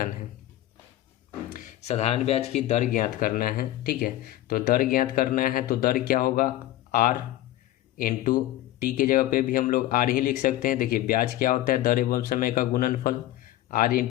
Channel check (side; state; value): right; quieter; 14.6 dB